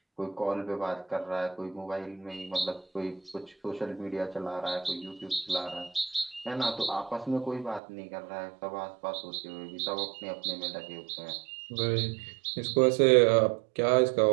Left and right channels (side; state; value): left; drops out; at 7.8 s